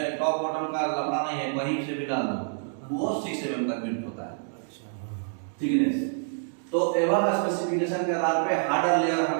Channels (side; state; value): left; silent; digital silence